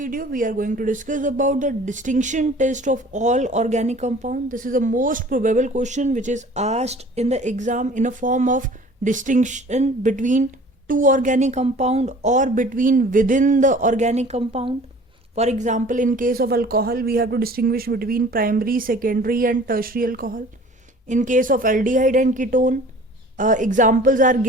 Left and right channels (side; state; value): both; normal; correlation 0.48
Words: we are going to discuss about the distinction test of all organic compound. This is the most probable question which is asked in the exam in a form of distinction between two organic compound or between within the organic compound. For example, in case of alcohol, we have to distinguish between primary, secondary and tertiary alcohol. In case of aldehyde and ketone, examples are